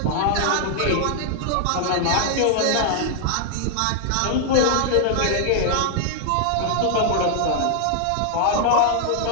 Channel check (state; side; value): different; both; correlation -0.01